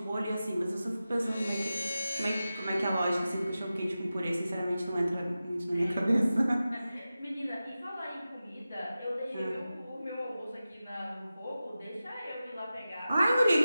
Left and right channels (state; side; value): inverted; both; correlation -0.94